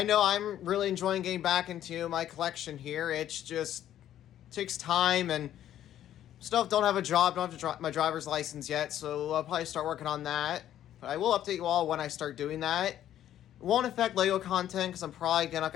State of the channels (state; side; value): quieter; right; 11.6 dB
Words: know I'm really enjoying getting back into my collection here. It's just takes time and still don't have a job, don't have my driver's license yet, so I'll probably start working on that. But I will update you all when I start doing that. It won't affect Lego content because I'm probably not